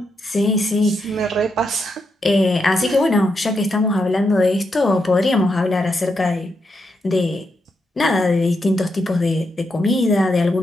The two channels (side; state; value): both; normal; correlation 0.83